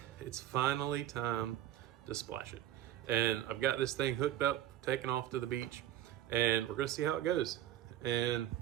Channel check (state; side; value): quieter; left; 12.4 dB